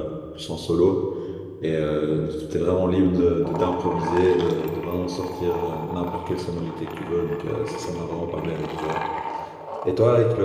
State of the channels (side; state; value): both; identical; correlation 1.00